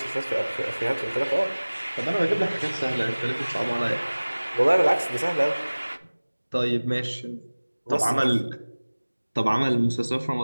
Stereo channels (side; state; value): both; inverted; correlation -1.00